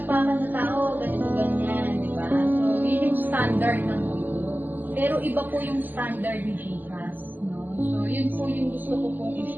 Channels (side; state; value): left; late; 0.087 ms